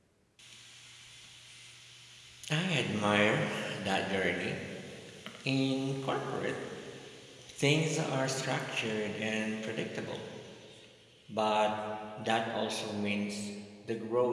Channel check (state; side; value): identical; both; correlation 1.00